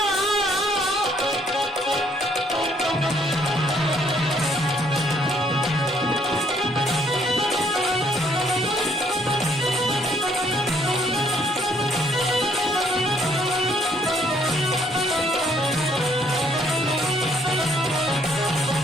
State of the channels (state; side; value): normal; both; correlation 0.66